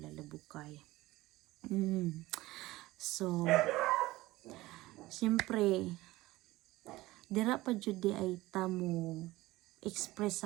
labukay. So, siyempre, dira pa jud di ay tamo express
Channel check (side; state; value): left; quieter; 18.5 dB